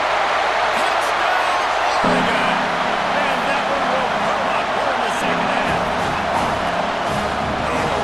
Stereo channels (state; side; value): noise; left; hum, 24 dB below the sound